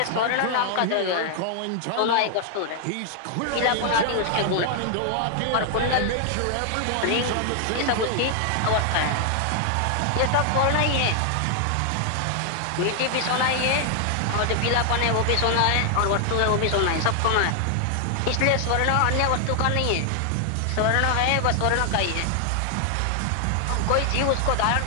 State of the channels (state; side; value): different; both; correlation 0.00